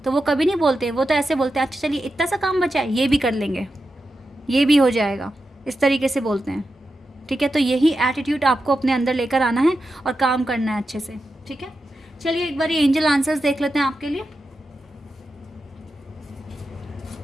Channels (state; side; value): normal; both; correlation 0.89